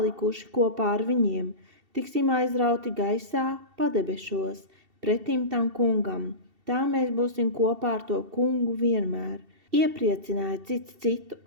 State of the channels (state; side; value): late; left; 2.7 ms